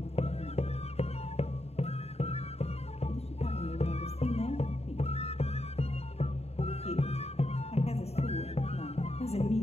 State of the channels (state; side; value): late; right; 0.30 ms